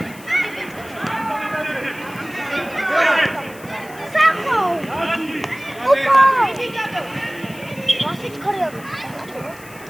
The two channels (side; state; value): left; noise; hiss, 20 dB below the sound